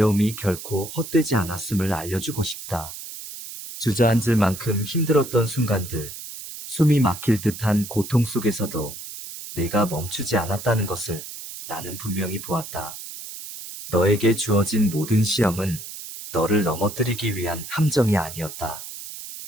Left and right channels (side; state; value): right; noise; hiss, 11 dB below the sound